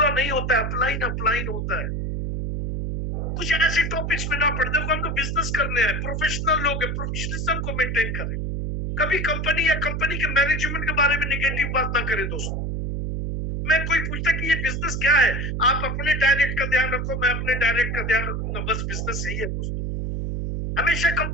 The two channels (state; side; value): noise; right; hum, 2 dB below the sound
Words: नहीं होता है, अपलाइन अपलाइन होता है। कुछ ऐसे टॉपिक्स में ना पढ़, देखो हम लोग बिजनेस करने हैं, प्रोफेशनल लोग हैं, प्रोफेशनलिज्म को मेंटेन करें। कभी कंपनी या कंपनी के मैनेजमेंट के बारे में नेगेटिव बात ना करें दोस्तों। मैं कोई पूछता कि ये बिजनेस क्या है, आप अपने डायरेक्ट का ध्यान रखो, मैं अपने डायरेक्ट का ध्यान रखूंगा, बस बिजनेस यही है दोस्तों। हमेशा